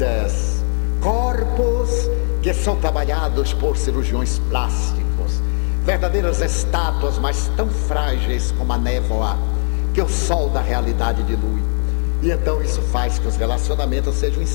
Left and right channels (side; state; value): right; silent; digital silence